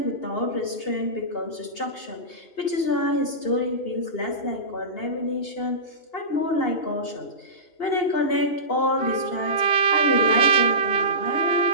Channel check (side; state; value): right; late; 2.8 ms